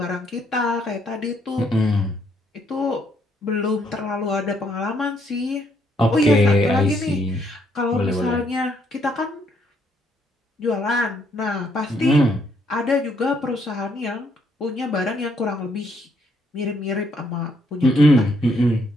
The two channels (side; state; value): both; normal; correlation 0.71